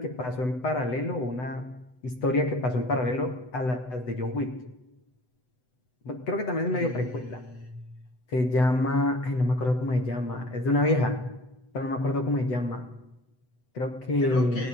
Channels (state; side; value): late; right; 8.0 ms